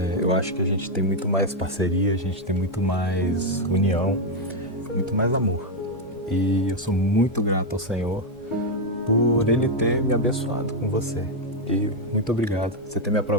Eu acho que a gente tem muito mais parceria, a gente tem muito mais união, muito mais amor. E eu sou muito grato ao Senhor por Ele ter me abençoado com você. E muito obrigado por você ter me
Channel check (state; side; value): normal; both; correlation 0.02